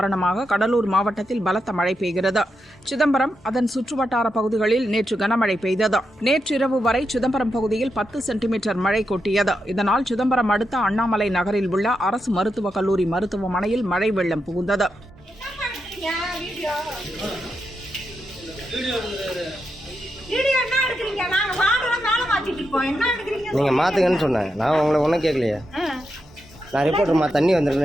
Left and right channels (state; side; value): normal; both; correlation 0.85